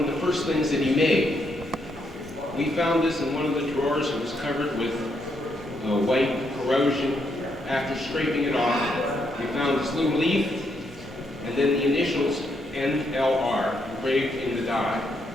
the first things that he made. We found this in one of the drawers. It was covered with white corrosion. After scraping it off, we found this little leaf, and then the initials NLR engraved in the die.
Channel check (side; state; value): both; normal; correlation 0.77